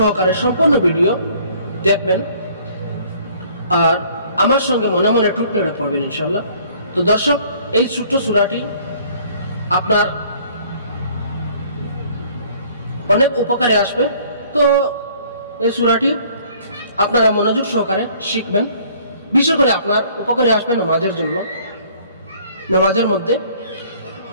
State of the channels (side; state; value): both; inverted; correlation -0.57